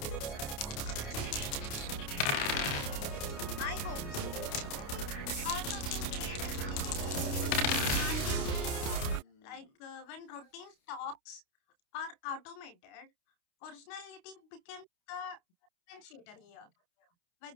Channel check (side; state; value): right; late; 29 ms